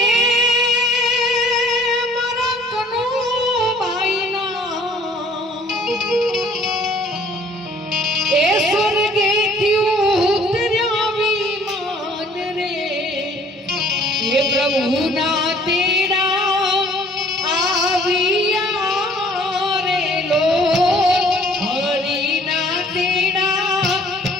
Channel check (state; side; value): normal; both; correlation 0.56